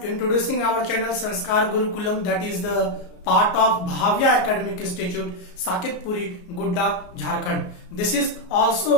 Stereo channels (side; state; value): right; late; 33 ms